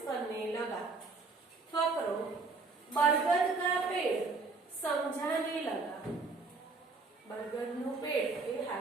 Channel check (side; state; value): left; quieter; 4.0 dB